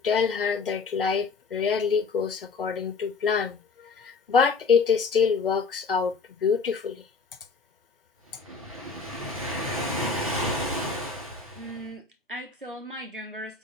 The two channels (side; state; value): right; quieter; 4.8 dB